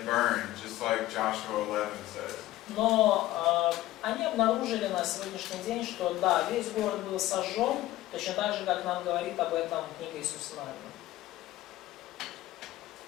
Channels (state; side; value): quieter; right; 15.8 dB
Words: burned, just like Joshua 11 says. Но они обнаружили на сегодняшний день, что да, весь город был сожжен, точно так же, как нам говорит об этом книга Иисуса Навина.